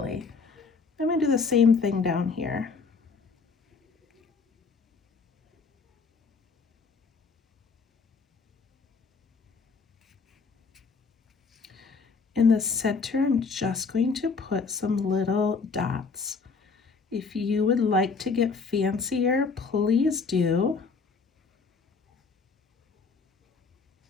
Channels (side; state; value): right; quieter; 4.8 dB